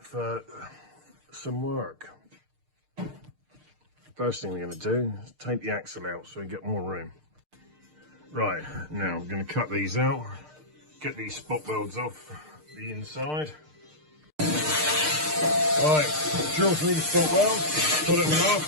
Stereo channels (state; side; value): late; left; 6.6 ms